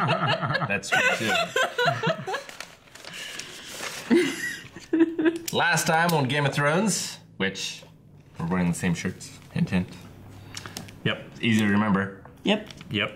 That's true, too. Last time on Game of Thrones, which we're wearing the same shirts. Hint, hint. Yep. Easy to remember. Yep. Yep.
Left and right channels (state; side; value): identical; both; correlation 1.00